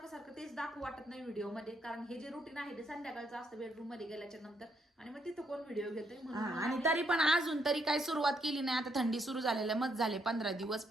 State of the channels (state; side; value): normal; both; correlation 0.74